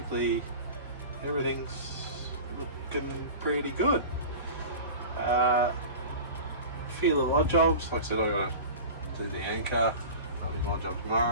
everything's looking pretty good. A few little odd jobs. Like I said, I got to do the anchor. That'll be my job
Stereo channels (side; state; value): both; inverted; correlation -0.34